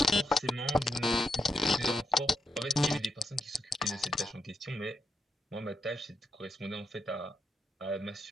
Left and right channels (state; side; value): normal; both; correlation 0.83